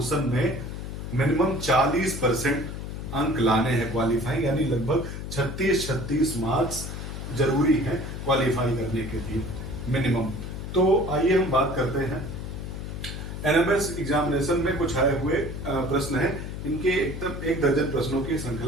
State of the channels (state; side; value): noise; left; hum, 7 dB below the sound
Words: में मिनिमम 40% अंक लाने हैं क्वालिफाई, यानी लगभग 36 मार्क्स जरूरी हैं क्वालिफाई करने के लिए मिनिमम। तो आइए हम बात करते हैं एनएमएस एग्जामिनेशन में कुछ आए हुए प्रश्न हैं। इनके एकदम 1 दर्जन प्रश्नों की